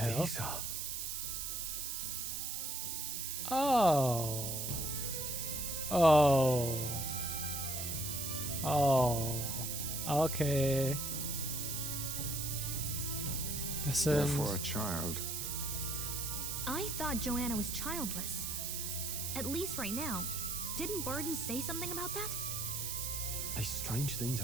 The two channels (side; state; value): right; noise; hiss, 3 dB below the sound